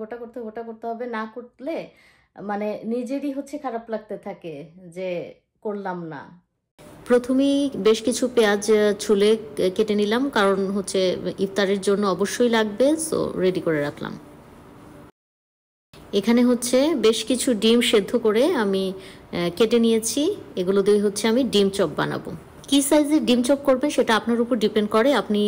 ওটা করতে হবে, ওটা করতে হবে, না করলে মানে নিজেরই হচ্ছে খারাপ লাগতে থাকে যে করলাম না। প্রথমেই বেশ কিছু পেঁয়াজ ছুলে কেটে নিলাম, কারণ হচ্ছে ইফতারের জন্য অবশ্যই লাগবে, সো রেডি করে রাখলাম। এখানে হচ্ছে বেশ কিছু ডিম সেদ্ধ করে আমি কেটে নিয়েছি, এগুলো দিয়ে হচ্ছে আমি ডিম চপ বানাবো। কি সাইজের ডিম চপ করবেন সেটা আপনার উপর ডিপেন্ড করে। আপনি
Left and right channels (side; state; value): both; identical; correlation 1.00